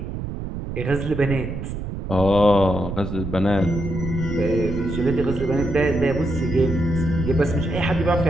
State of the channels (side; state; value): right; noise; rumble, 6 dB below the sound